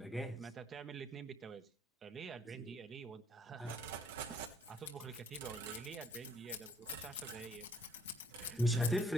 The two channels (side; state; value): both; normal; correlation 0.64